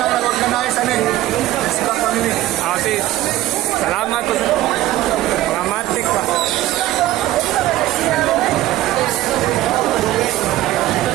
na organize namin. Xbox family. Sis, salamat po sa mga matik pa.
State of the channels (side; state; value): left; quieter; 15.2 dB